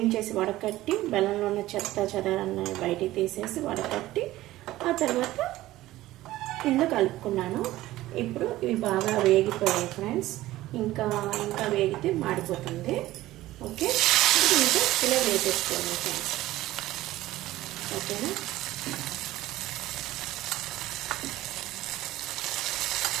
చేసి వడకట్టి బెల్లంలో ఉన్న చెత్త చెదారాన్ని బయటికి తీసేసి వడకట్టి ఆ తర్వాత ఇందులో కలుపుకున్నాను. ఇప్పుడు ఇవి బాగా వేగిపోయాయి ఫ్రెండ్స్. ఇంకా వేగితే మాడిపోతుంది. ఓకే, ఇంకా ఇలా వేసేసుకోండి ఫ్రెండ్స్. ఓకేనా?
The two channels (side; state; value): left; quieter; 16.2 dB